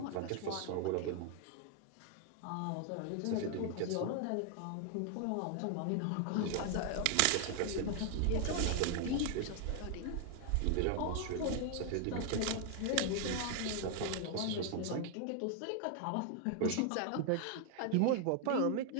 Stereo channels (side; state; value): both; different; correlation 0.00